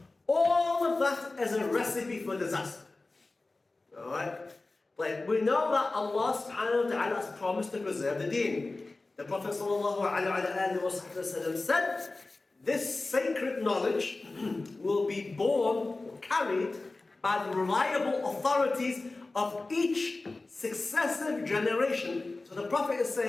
All of that is a recipe for disaster. Alright? Like, we know that Allah subhanahu wa ta'ala has promised to preserve the deen. The Prophet sallallahu alaihi wasallam said, this sacred knowledge will be borne or carried by the reliable authorities of each successive generation. So the Prophet is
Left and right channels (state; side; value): quieter; right; 3.3 dB